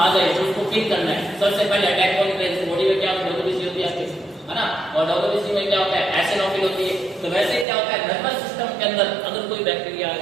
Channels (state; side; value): drops out; left; at 7.7 s